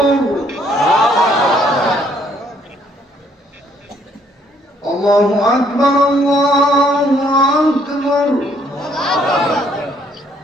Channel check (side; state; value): both; normal; correlation 0.66